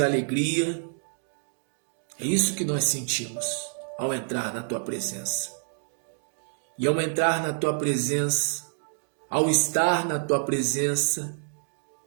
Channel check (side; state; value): left; silent; 60 dB below the other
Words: É isso que nós sentimos ao entrar na Tua presença. E ao entrar na Tua presença, ao estar na Tua presença,